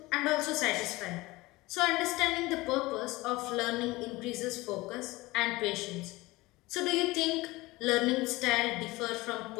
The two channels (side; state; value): right; quieter; 20.8 dB